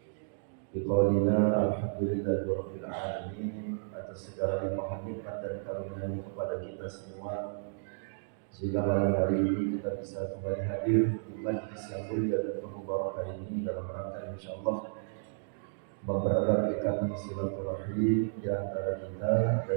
Biqaulina alhamdulillahirabbil alamin atas segala limpahan nikmat dan karunia kepada kita semua, sehingga malam hari ini kita bisa kembali hadir di majlis yang mulia dan penuh barokah ini dalam rangka insyaallah mempererat ikatan silaturahim di antara kita,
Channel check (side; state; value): left; silent; digital silence